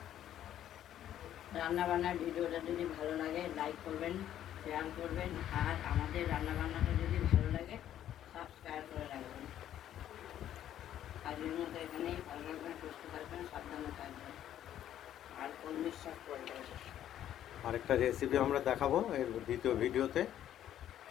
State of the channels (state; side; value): quieter; right; 11.3 dB